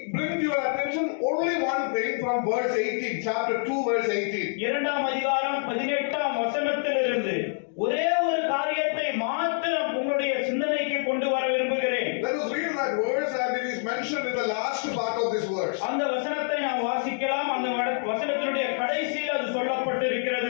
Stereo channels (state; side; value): silent; right; 60 dB below the other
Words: bring to your attention only one thing from verse 18, chapter 2 verse 18. 2ஆம் அதிகாரம் 18ஆம் வசனத்திலிருந்து ஒரே ஒரு காரியத்தை மாத்திரம் உங்களுடைய சிந்தனைக்கு கொண்டு வர விரும்புகிறேன். Let us read that verse and it is mentioned in the last part of this verse. அந்த வசனத்தை நாம் வாசிக்கலாம். அந்த வசனத்தினுடைய கடைசியில் அது